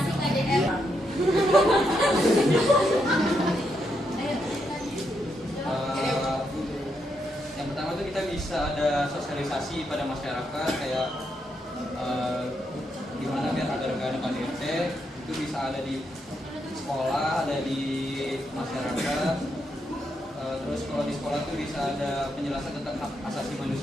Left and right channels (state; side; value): normal; both; correlation 0.80